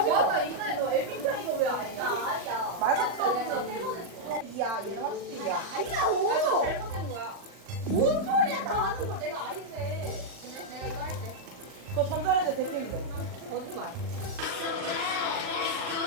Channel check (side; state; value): left; late; 39 ms